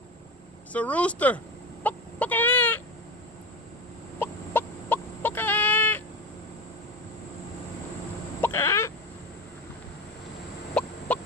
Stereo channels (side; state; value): both; normal; correlation 0.25